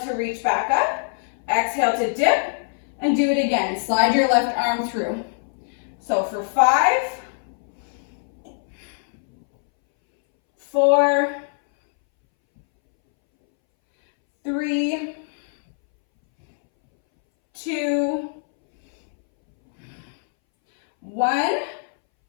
to reach back up. Exhale to dip and do it again. Slide your left arm through. So for 5, 4, 3, 2, 1,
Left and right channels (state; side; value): silent; right; 62 dB below the other